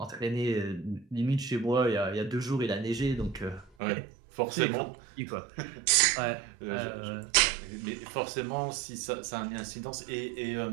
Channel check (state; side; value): drops out; left; at 3.7 s